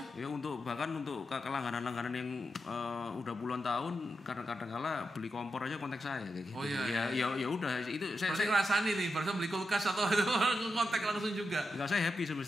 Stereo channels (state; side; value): normal; both; correlation 0.87